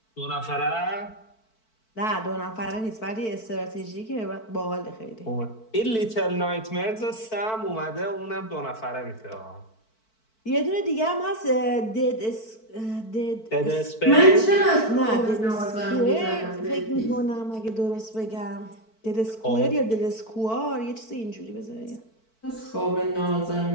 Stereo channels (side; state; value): right; late; 4.5 ms